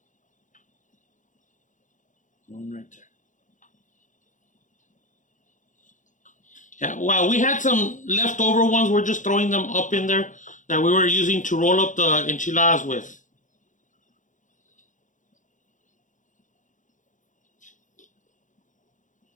One right there. Yeah, well, we had some leftover ones. We're just throwing them up in there that we were using to roll up the enchiladas with.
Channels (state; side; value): late; right; 0.37 ms